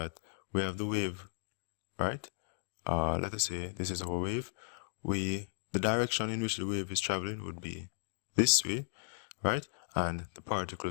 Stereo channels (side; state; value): right; silent; digital silence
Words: we have the wave, right? Let us say this is our wave. The direction in which the wave is traveling would be this way, right? And the